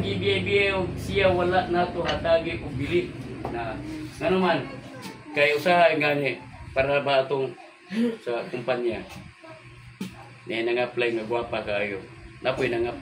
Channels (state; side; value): identical; both; correlation 1.00